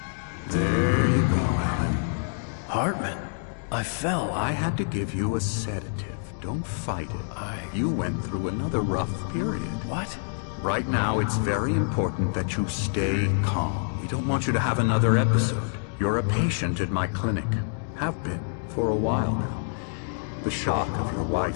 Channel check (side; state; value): right; silent; digital silence